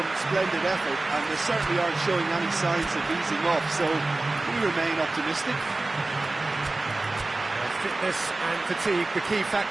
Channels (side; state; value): left; quieter; 3.1 dB